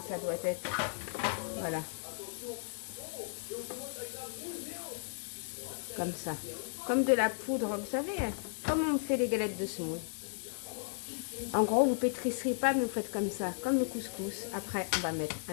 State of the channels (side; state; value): right; silent; digital silence